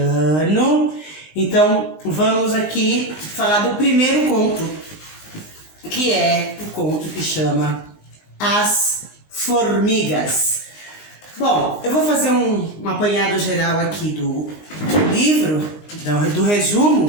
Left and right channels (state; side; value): late; right; 19 ms